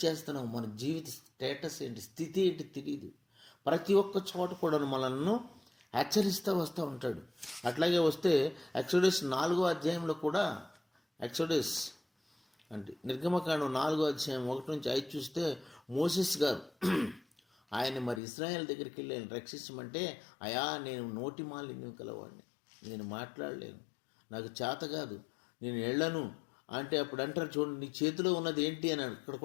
చేస్తున్నాం, మన జీవిత స్టేటస్ ఏంటి, స్థితి ఏంటి తెలియదు. ప్రతి ఒక్క చోట కూడా మనల్ని హెచ్చరిస్తూ వస్తూ ఉంటాడు. అట్లాగే వస్తే ఎక్సోడస్ 4వ అధ్యాయంలో కూడా, ఎక్సోడస్ అంటే నిర్గమకాండం 4వ అధ్యాయం 1 నుంచి 5 చూస్తే మోసెస్ గారు ఆయన మరి ఇశ్రాయేల్ దగ్గరికి వెళ్ళి ఆయన రక్షించమంటే, అయా నేను నోటి మాలిన్యం కలవాడిని, నేను మాట్లాడలేను, నాకు చేత కాదు, నేను వెళ్ళను అంటే అప్పుడు అంటారు చూడండి నీ చేతిలో ఉన్నది ఏంటి అని అక్కడ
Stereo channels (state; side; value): drops out; right; at 18.2 s